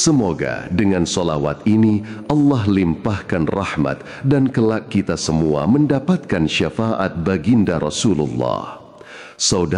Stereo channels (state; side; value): identical; both; correlation 1.00